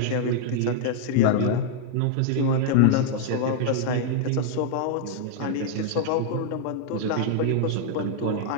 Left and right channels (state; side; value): different; both; correlation 0.00